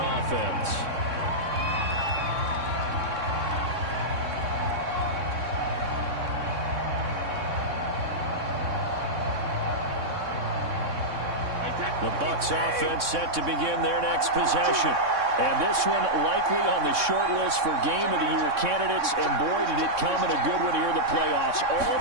offense. The Bucs offense set to begin their next possession. And this one likely on the short list for Game of the Year candidates. And boy, did it come in a good one here in the playoffs. All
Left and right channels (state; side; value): late; left; 3.6 ms